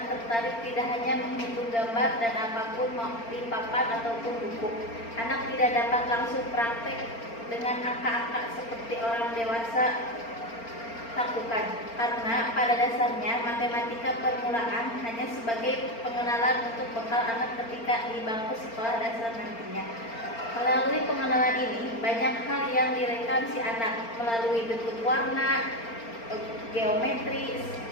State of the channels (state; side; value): late; right; 4.4 ms